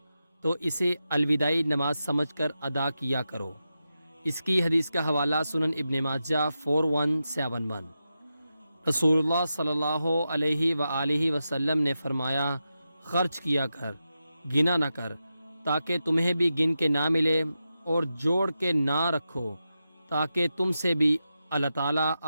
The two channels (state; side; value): inverted; both; correlation -0.89